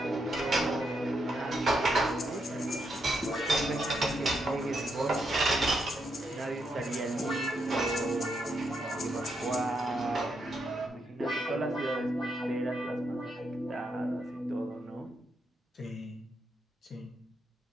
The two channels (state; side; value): normal; both; correlation 0.81